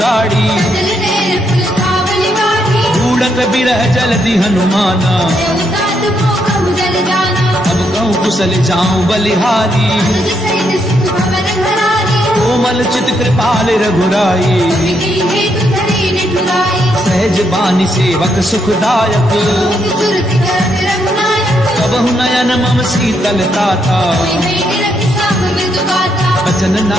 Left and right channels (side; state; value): both; normal; correlation 0.77